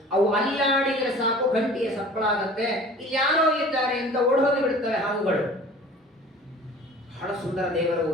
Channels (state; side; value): normal; both; correlation 0.45